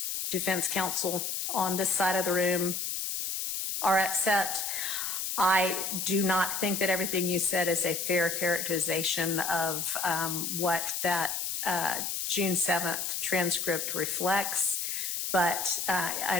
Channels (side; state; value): left; noise; hiss, 2 dB below the sound